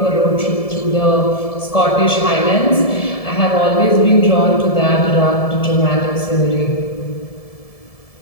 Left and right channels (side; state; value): right; late; 1.7 ms